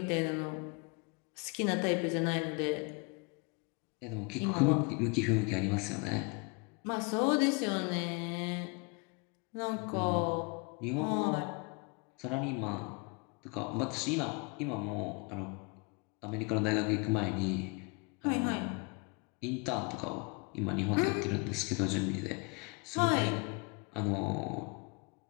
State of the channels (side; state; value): right; quieter; 31.5 dB